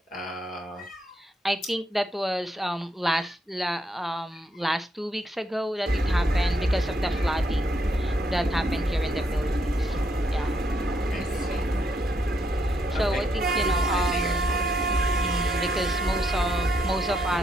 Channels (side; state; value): both; normal; correlation 0.76